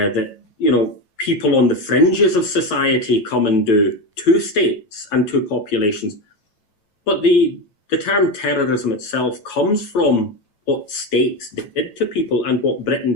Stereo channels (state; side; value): late; right; 9.1 ms